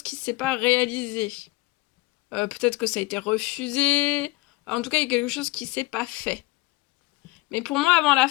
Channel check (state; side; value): quieter; right; 20.9 dB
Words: qui ne s'est pas réalisé. Peut-être que ça a été refusé. En tout cas, il y a quelque chose qui ne s'est pas fait. Mais pour moi, avant la